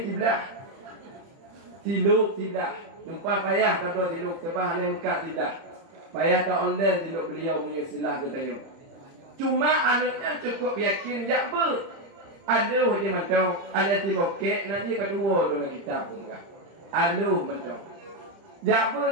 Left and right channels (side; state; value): left; late; 30 ms